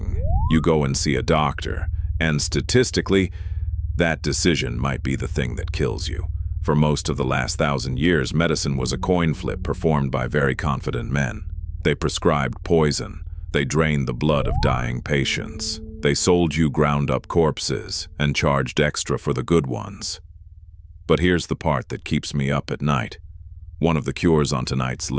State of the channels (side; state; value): both; identical; correlation 1.00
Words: You go and see a doctor. And statistically, that decision might be the thing that kills you. For most of the last 1,000 years, medicine was a coin flip performed by very confident men. They prescribed poison. They drained the blood of dying patients. They sold you ground-up corpses and charged extra for the good ones. But here's the part that keeps me up at night. One of the cures on tonight's